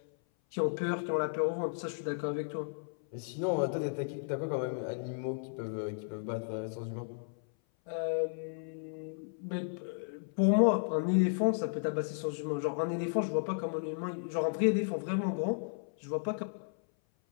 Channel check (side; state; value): right; silent; 55 dB below the other